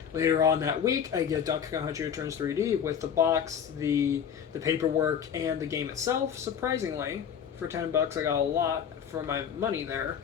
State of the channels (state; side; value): quieter; right; 8.1 dB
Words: Later on that week, I get Donkey Kong Country Returns 3D with the box, the paperwork, and the game itself. Surprisingly, for $10, I got a lot for my money there.